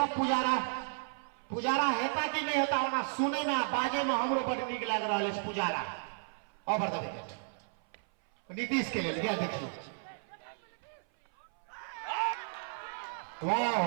पुजारा। पुजारा हेता कि नहीं होता होना सुने में बाजे में हमरो बड़ नीक लाग रहा है। Pujara over the wicket Nitish के लिए गया देखिए। वाह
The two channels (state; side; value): silent; left; 55 dB below the other